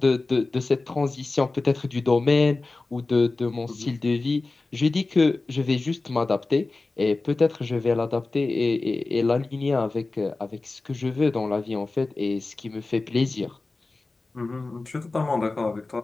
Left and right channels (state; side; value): quieter; right; 3.4 dB